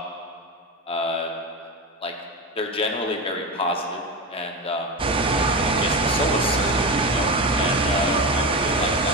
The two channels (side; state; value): both; normal; correlation 0.20